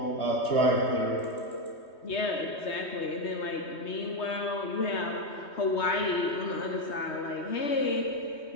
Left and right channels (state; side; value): late; right; 3.2 ms